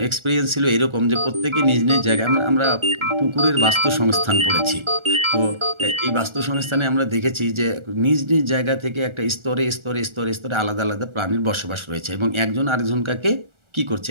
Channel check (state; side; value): late; left; 1.4 ms